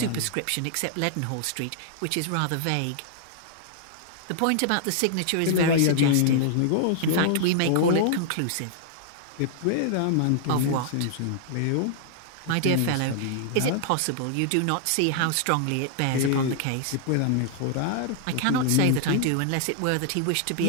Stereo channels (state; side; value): different; both; correlation -0.01